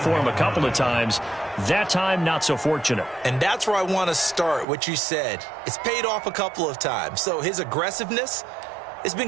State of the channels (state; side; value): drops out; left; at 4.7 s